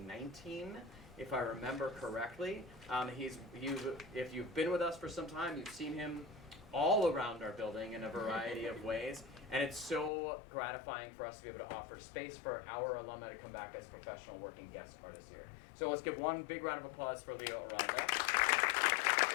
if I remember correctly. If you've been with us for some time, you've seen him all around our building in a variety of ways. And it's so gratifying for us to be able to offer space for our alumni to come back as professional working guest artists here. So let's give one big round of applause for Leo Aranda.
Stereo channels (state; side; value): drops out; right; at 10.1 s